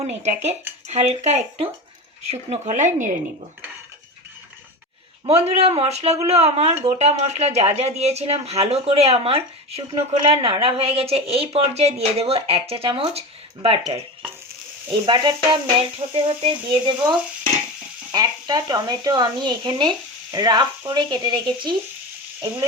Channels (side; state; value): both; normal; correlation 0.25